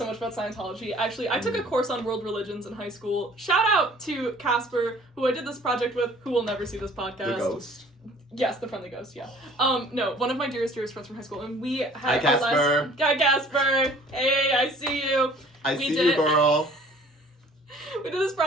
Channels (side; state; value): both; normal; correlation 0.53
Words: much about Scientology. Actually, I took a course on world religions in high school. Shout out to Casper, who I did this project with, who will never see this podcast. The ghost? Yes, the friendly ghost, yeah. No, one of my dearest friends from high school, and we had... Hi, Casper! Hi, Casper! Hey, I see you! I see you, girl! We did this